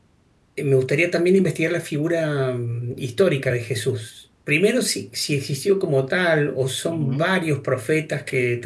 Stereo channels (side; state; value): both; identical; correlation 1.00